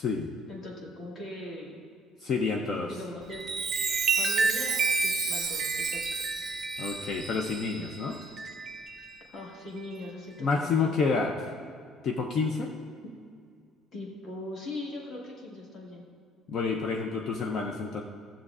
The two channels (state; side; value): normal; both; correlation 0.61